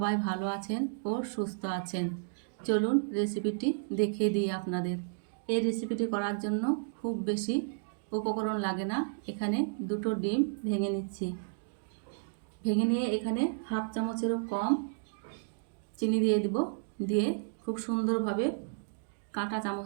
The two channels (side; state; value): left; silent; digital silence